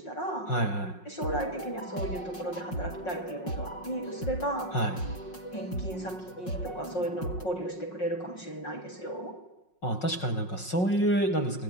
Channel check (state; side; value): late; right; 5.5 ms